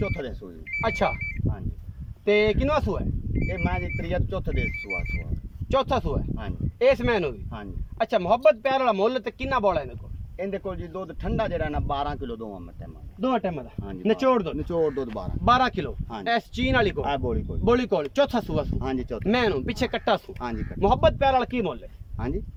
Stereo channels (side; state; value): both; identical; correlation 1.00